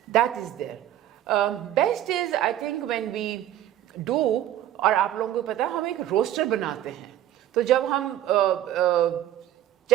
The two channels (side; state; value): left; quieter; 12.3 dB